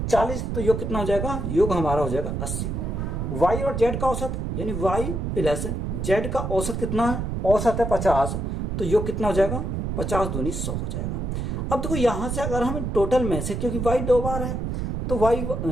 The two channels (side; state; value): right; noise; rumble, 2 dB below the sound